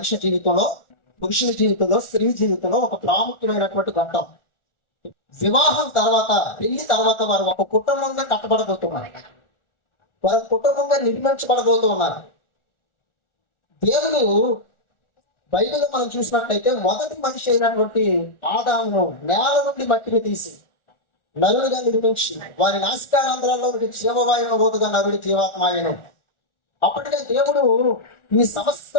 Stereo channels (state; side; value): late; right; 1.4 ms